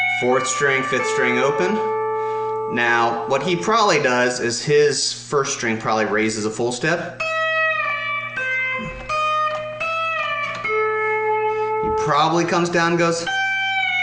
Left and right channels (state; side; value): identical; both; correlation 1.00